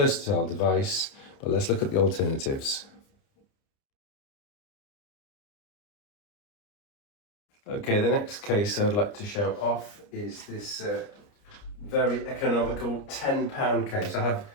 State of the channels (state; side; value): late; right; 29 ms